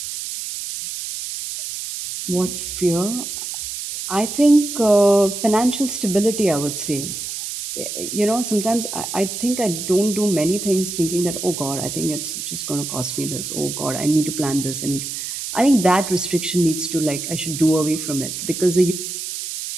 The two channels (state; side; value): noise; right; hiss, 6 dB below the sound